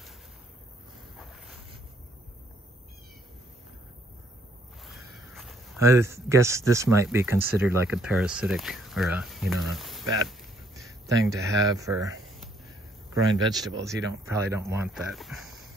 I guess this might be considered like a parasitic, or a, you know, a bad thing to have for growing vegetables. You probably don't want that.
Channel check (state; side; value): normal; both; correlation 0.68